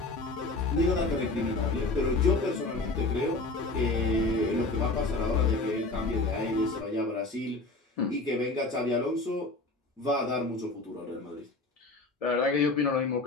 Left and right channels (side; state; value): right; quieter; 3.2 dB